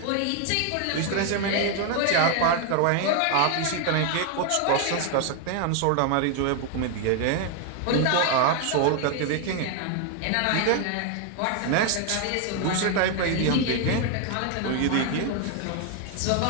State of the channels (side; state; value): both; different; correlation 0.00